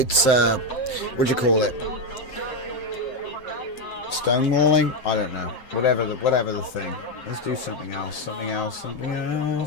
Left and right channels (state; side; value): late; right; 7.7 ms